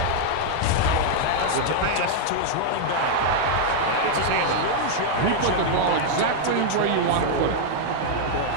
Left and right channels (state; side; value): different; both; correlation 0.00